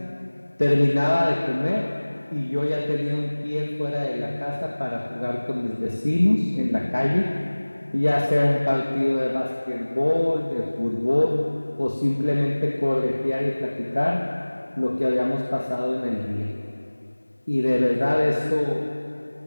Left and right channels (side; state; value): both; inverted; correlation -1.00